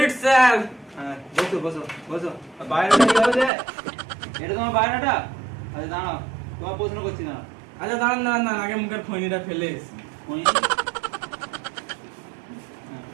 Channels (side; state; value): left; drops out; at 3.5 s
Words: sir. হ্যাঁ, বসো বসো বসো। বায়োডাটা কিভাবে দেয়? এটা তোমার বায়োডাটা? আচ্ছা দাঁড়াও, তোমার প্রশ্ন করছি না। আচ্ছা দাঁড়ান দাঁড়ান দাঁড়ান, আগে মুখের খৈনিটা ফেলে এসি।